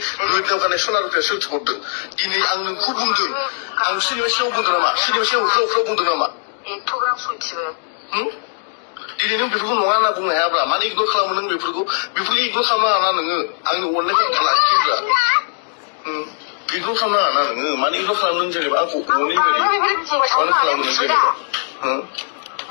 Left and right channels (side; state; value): right; silent; digital silence